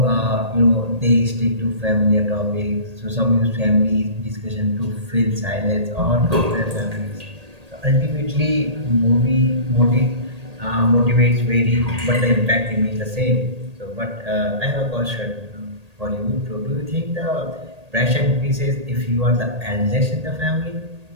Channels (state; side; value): late; left; 1.8 ms